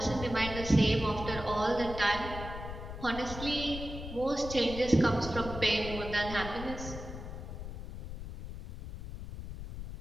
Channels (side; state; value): left; noise; rumble, 9 dB below the sound